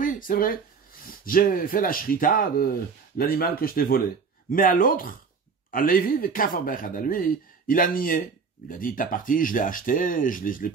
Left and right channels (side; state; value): left; quieter; 5.4 dB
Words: c'est vrai, j'ai fait la shrita de l'animal que je t'ai volé. Mais à l'autre, à Lévi, à lui, il a nié. Il a dit, ta partie, je l'ai acheté, je l'ai